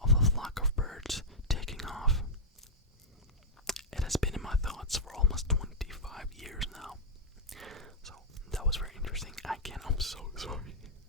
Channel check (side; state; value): both; normal; correlation -0.06